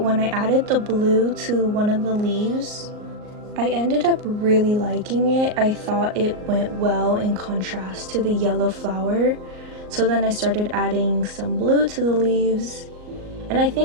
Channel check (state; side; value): late; left; 38 ms